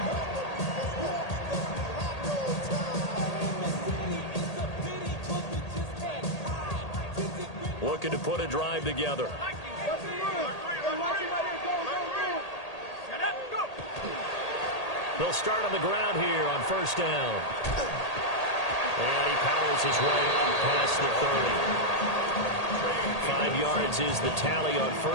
Looking to put a drive together. They'll start on the ground here on first down. And he powers his way up past the 30. 5 yards is the tally on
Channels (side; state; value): right; late; 1.8 ms